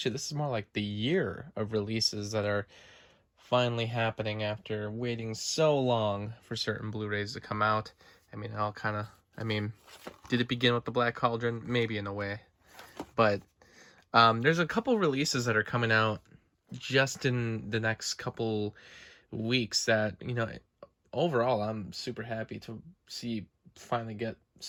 this is more like the year of releases that are finally happening after waiting so long for certain Blu-rays to come out. Did it begin with the Black Cauldron? Maybe in a way, but there's a couple releases that are coming out just in the next couple weeks that, overall I'm super happy to see finally get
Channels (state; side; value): identical; both; correlation 1.00